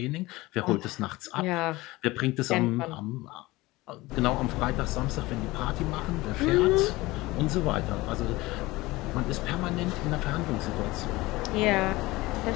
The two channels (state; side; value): quieter; right; 20.2 dB